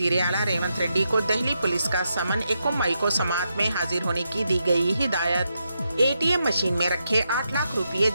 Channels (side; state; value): both; inverted; correlation -0.84